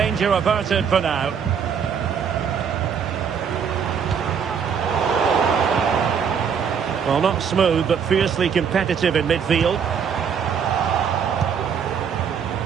averted for now. Well, not smooth, but fiercely competitive in midfield.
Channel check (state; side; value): quieter; left; 7.2 dB